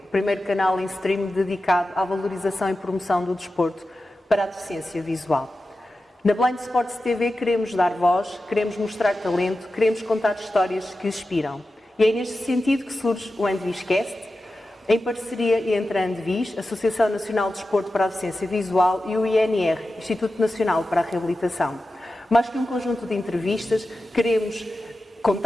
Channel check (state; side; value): normal; both; correlation 0.93